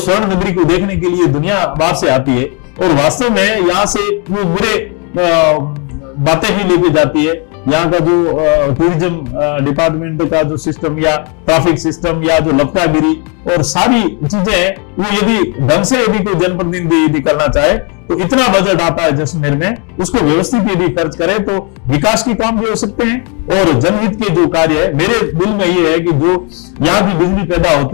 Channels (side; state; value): right; quieter; 35.3 dB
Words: नगरी को देखने के लिए दुनिया बाहर से आती है और वास्तव में यहाँ से वो मेरे बातें ही लेके जाती है। यहाँ का जो टूरिज्म डिपार्टमेंट का जो सिस्टम या ट्रैफिक सिस्टम या जो लपटागिरी और सारी चीजें हैं, वो यदि ढंग से यदि कोई जनप्रतिनिधि यदि करना चाहे तो इतना बजट आता है जैसलमेर में, उसको व्यवस्थित यदि खर्च करे तो विकास के काम भी हो सकते हैं और जनहित के जो कार्य है। मेरे दिल में ये है कि जो यहाँ की बिजली पैदा